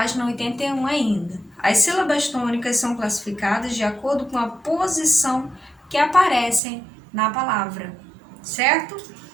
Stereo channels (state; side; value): drops out; left; at 6.6 s